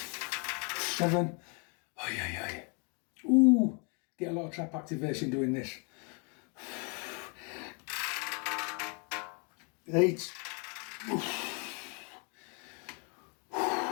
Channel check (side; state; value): right; quieter; 35.6 dB